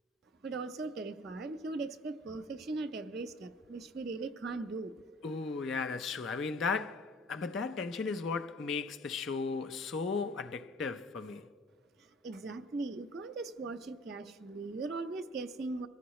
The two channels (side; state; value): both; normal; correlation 0.50